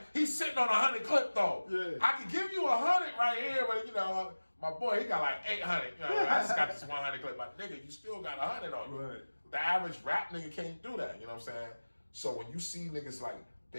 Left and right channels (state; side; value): inverted; both; correlation -1.00